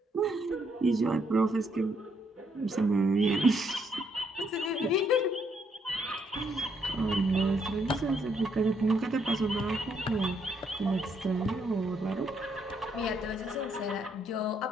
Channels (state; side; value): normal; both; correlation 0.73